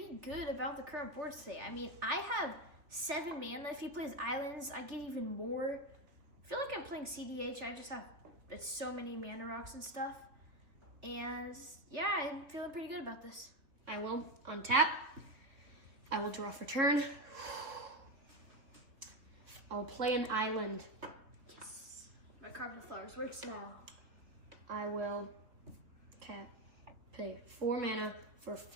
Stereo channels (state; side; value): late; left; 3.2 ms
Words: good about the current board state. I mean, I have 7 mana. If he plays islands, I get even more. I feel like I'm playing CDH. I just have so many mana rocks and stuff. And yeah, I'm feeling pretty good about this. I will untap. I will draw for turn. I will play an island. Yes. My Carpet of Flowers works now. I will pay 4 mana for